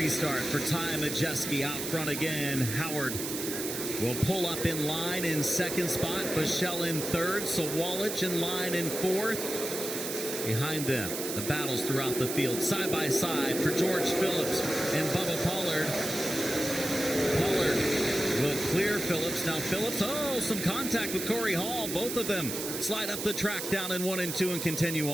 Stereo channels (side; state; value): right; noise; hiss, 5 dB below the sound